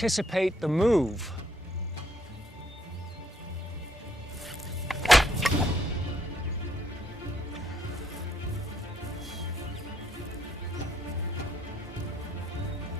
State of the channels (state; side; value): normal; both; correlation 0.70